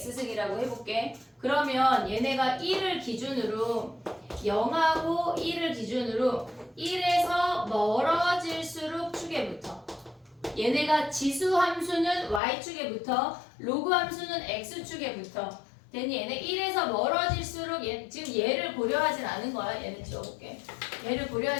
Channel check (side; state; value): right; drops out; at 12.4 s